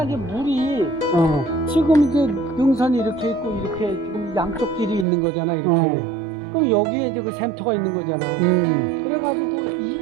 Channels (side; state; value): left; drops out; at 5.1 s